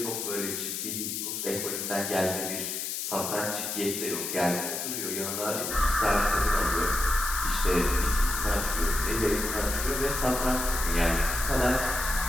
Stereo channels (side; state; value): left; noise; hiss, 3 dB below the sound